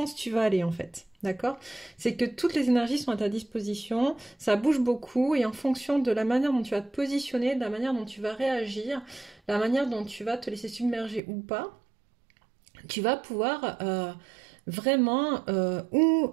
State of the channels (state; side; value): drops out; left; at 11.2 s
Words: tu vas aller en fait. D'accord? C'est que toutes les énergies sont à ta disposition, ça bouge beaucoup et en fonction de la manière dont tu vas te positionner, de la manière dont tu vas réagir, la manière dont tu vas te laisser submerger ou pas, tu vas pouvoir vraiment